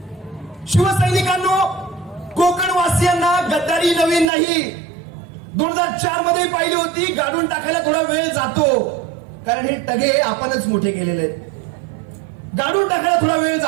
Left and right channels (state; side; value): drops out; left; at 4.3 s